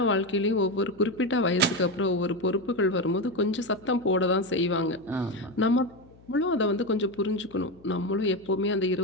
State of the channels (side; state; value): left; noise; hum, 25 dB below the sound